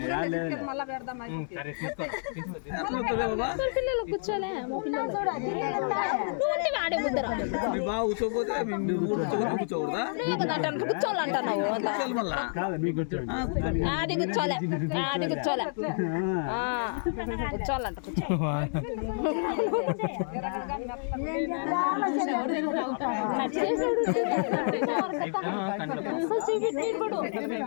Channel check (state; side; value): silent; right; digital silence